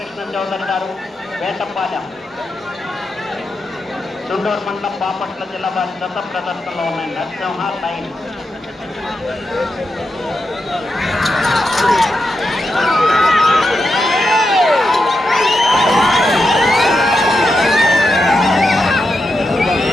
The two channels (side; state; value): both; normal; correlation 0.87